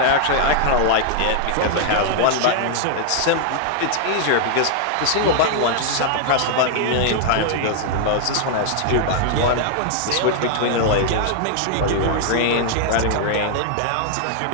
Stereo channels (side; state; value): both; different; correlation 0.00